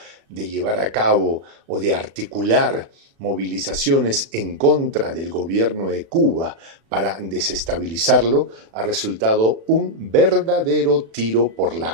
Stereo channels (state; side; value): late; left; 36 ms